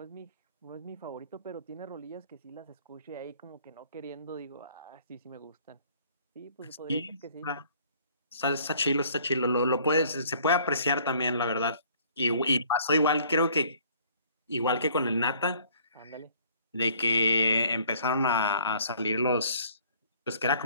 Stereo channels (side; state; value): both; inverted; correlation -0.58